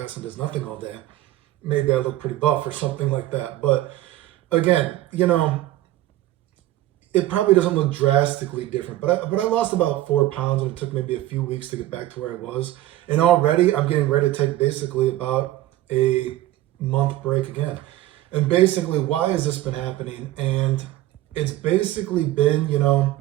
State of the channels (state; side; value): quieter; left; 15.2 dB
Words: and does nothing all day, maybe I look pretty buff or something like that. But again, you know, it probably doesn't look drastically different. But I lost about 4 pounds and it took maybe a few weeks to get back to where I was. And already I'm getting ready to take basically about a month break again. And basically, why has this been happening? And it's basically been, you